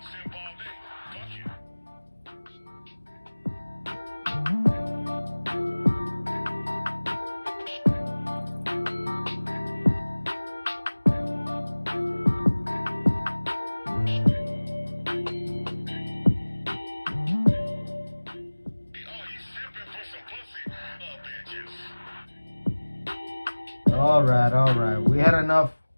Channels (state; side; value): inverted; both; correlation -1.00